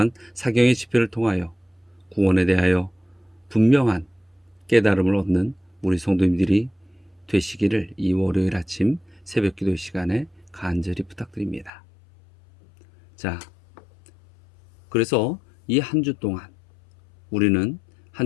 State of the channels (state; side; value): drops out; right; at 11.7 s